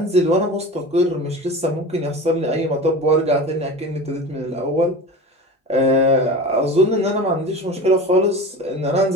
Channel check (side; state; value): both; normal; correlation 0.33